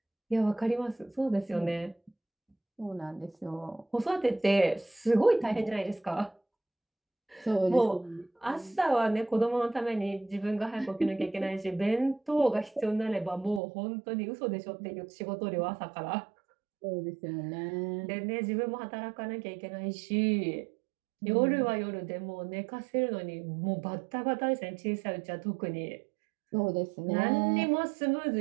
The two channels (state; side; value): drops out; left; at 13.6 s